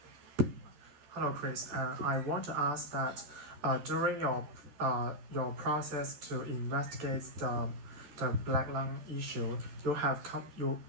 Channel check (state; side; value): late; left; 14 ms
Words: Hello, Chris. I want to ask that during your process to investigate the black lung issue,